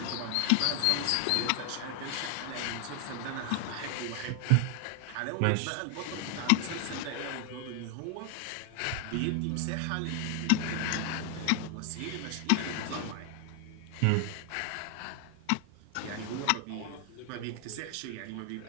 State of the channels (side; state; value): both; different; correlation 0.01